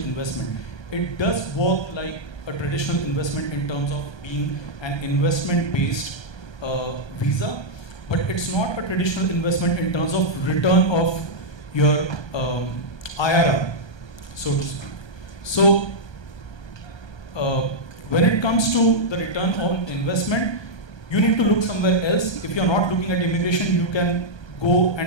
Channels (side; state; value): right; late; 1.2 ms